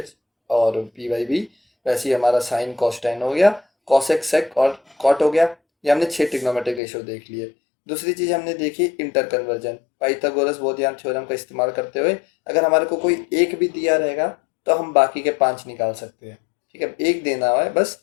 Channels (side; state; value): right; drops out; at 6.8 s